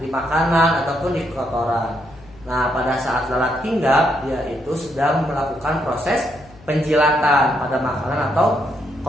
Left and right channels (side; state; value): left; noise; hum, 24 dB below the sound